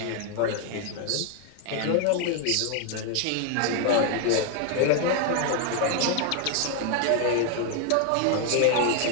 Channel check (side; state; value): both; different; correlation 0.01